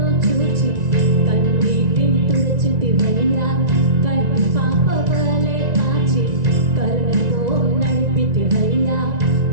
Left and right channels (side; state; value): left; late; 1.9 ms